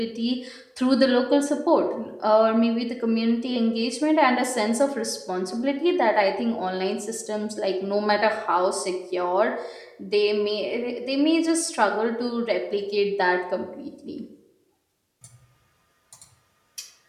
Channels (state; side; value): identical; both; correlation 1.00